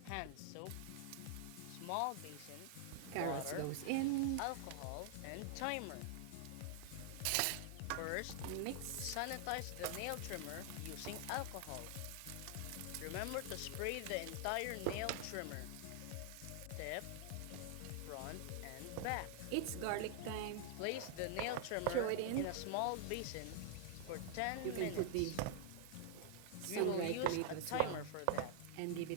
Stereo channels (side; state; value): both; different; correlation 0.00